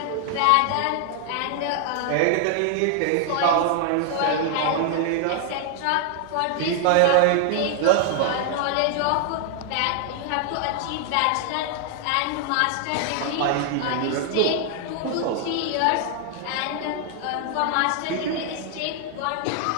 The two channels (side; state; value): both; different; correlation 0.00